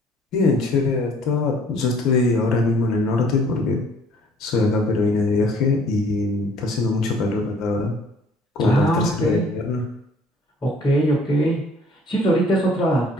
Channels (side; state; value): both; normal; correlation 0.57